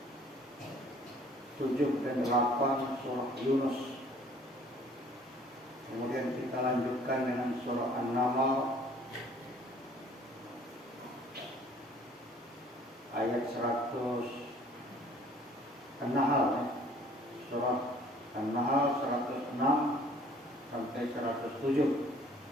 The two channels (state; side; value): normal; both; correlation 0.55